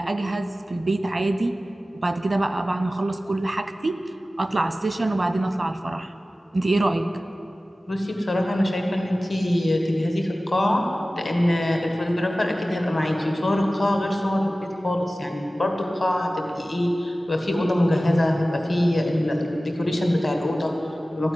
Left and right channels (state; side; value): normal; both; correlation 0.96